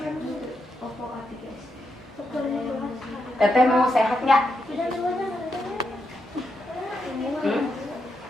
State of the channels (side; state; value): both; normal; correlation 0.83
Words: Teteh mau sehat nggak? Hmm?